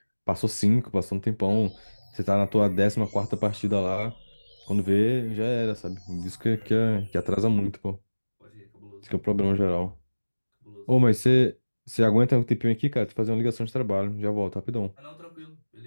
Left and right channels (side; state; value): both; inverted; correlation -1.00